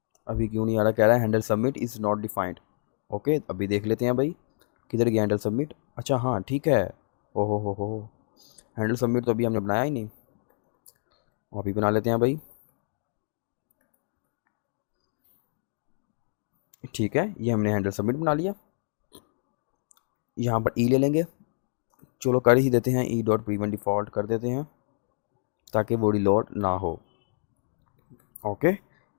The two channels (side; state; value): right; silent; digital silence